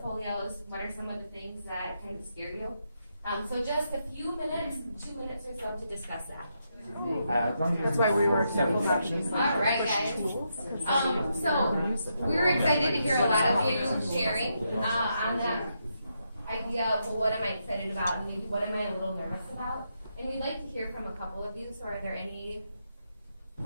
What are some of the things that kind of scare you? So just a few minutes, 2 minutes or so to discuss that. That's why we were careful about these. All right, guys. So we were excited to hear a lot of you sharing on that idea of, well, what am I excited about, and maybe what am I a little nervous about? And we'd like to hear from a couple of you. So are there any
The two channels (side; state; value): both; inverted; correlation -0.81